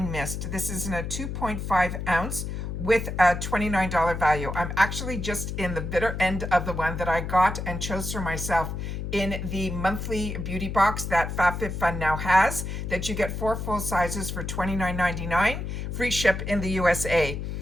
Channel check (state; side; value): noise; left; hum, 5 dB below the sound